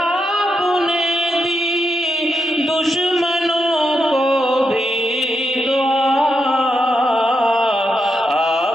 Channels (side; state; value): both; normal; correlation 0.83